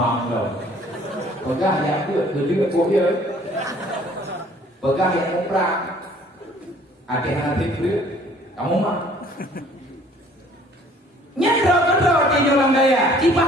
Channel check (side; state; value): both; normal; correlation 0.56